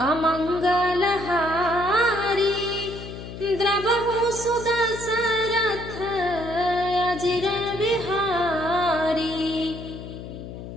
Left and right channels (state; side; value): noise; left; hum, 11 dB below the sound